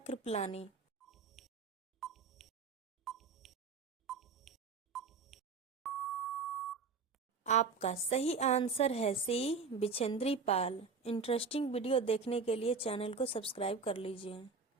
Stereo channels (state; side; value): quieter; left; 4.9 dB